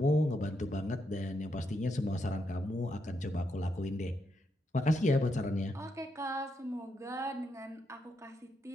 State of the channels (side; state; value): both; normal; correlation 0.80